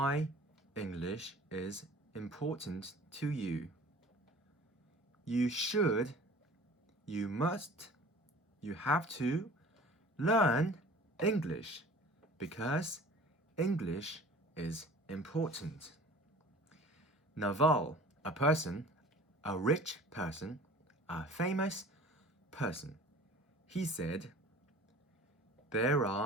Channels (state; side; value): normal; both; correlation 0.45